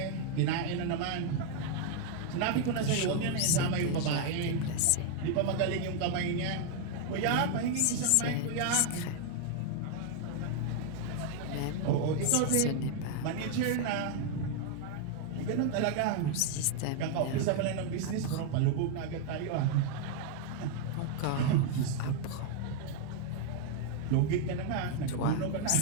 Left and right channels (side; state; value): both; different; correlation 0.00